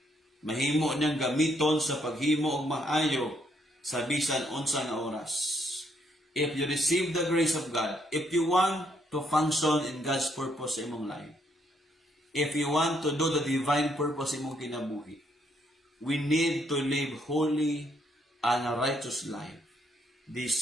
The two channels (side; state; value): both; normal; correlation 0.72